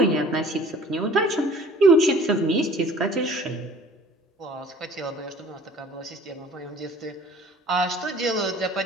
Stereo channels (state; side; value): normal; both; correlation 0.49